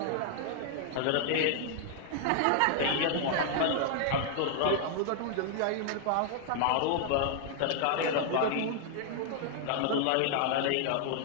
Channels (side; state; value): both; different; correlation -0.01